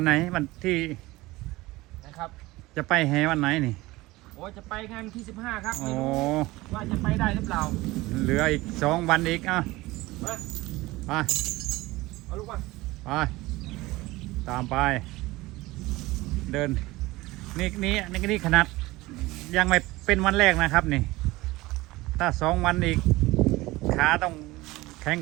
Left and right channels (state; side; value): quieter; left; 19.8 dB